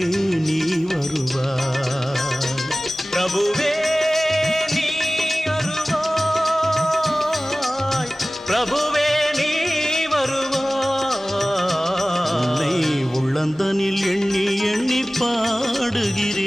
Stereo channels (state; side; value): normal; both; correlation 0.98